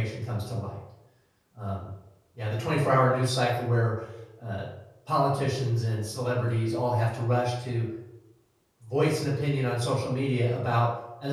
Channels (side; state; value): both; identical; correlation 1.00